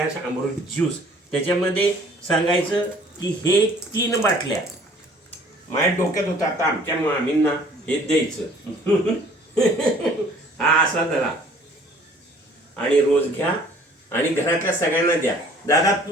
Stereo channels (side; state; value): both; normal; correlation 0.55